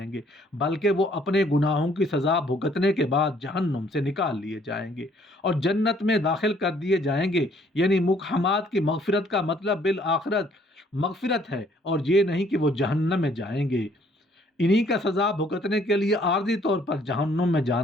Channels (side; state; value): both; normal; correlation 0.62